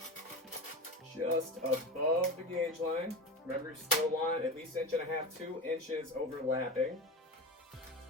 just above the gauge line. Remember, you still want at least 1.5 inches, 2 inches overlapping.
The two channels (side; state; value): both; normal; correlation 0.25